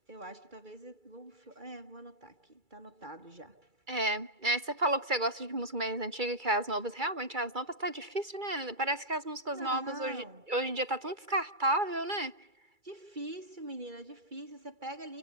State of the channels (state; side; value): late; left; 2.3 ms